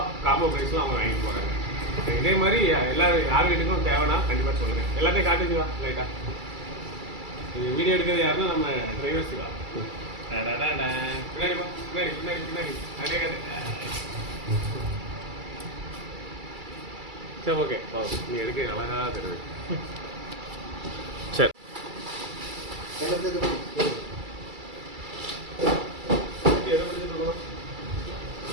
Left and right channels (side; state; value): left; late; 2.3 ms